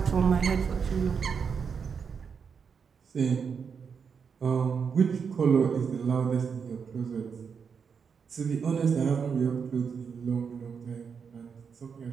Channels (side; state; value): left; quieter; 6.3 dB